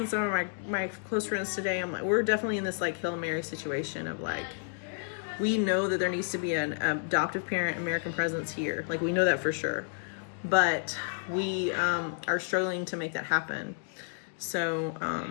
some of my close friends today. I'm like, we're definitely in this like Hail Mary situation of like, we know that there needs to be an adoptive parent American presence here. Like, we know that for sure, but we are struggling to make that happen.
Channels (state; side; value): silent; right; digital silence